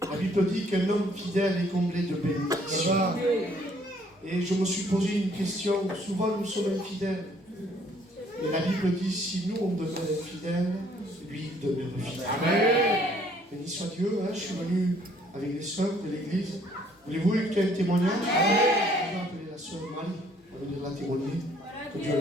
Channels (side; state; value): both; normal; correlation 0.62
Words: La Bible dit qu'un homme fidèle est comblé de bénédictions. Et je me suis posé une question. Souvent nous sommes infidèles. Et la Bible dit, si nous on demeure infidèles, lui il demeure fidèle. Béni soit Dieu, je suis venu avec les sœurs de l'église. Voulez-vous écouter un témoignage? Je vais appeler la sœur Marie, on va venir la témoigner. Que Dieu